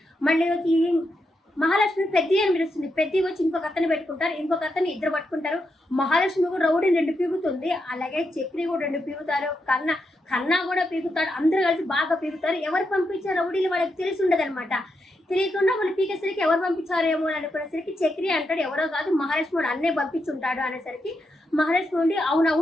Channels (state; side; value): normal; both; correlation 0.84